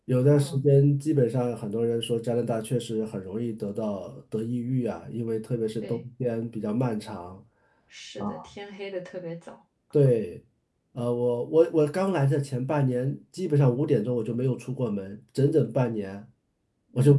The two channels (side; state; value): both; identical; correlation 1.00